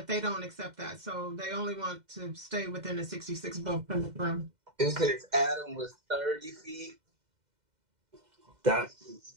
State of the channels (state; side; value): late; left; 2.1 ms